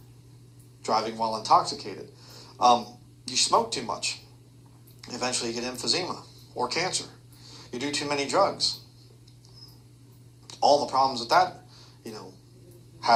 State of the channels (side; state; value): both; identical; correlation 1.00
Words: driving while intoxicated. You smoke too much, eventually you get emphysema or cancer. You do too many drugs. All the problems that that,